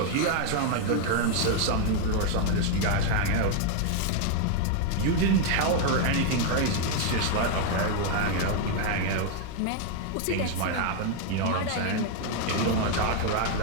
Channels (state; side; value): different; both; correlation 0.00